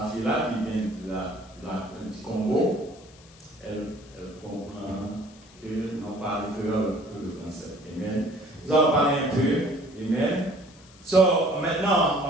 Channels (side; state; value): left; noise; hiss, 25 dB below the sound